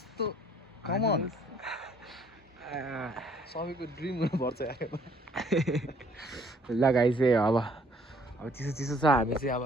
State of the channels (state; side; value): normal; both; correlation 0.61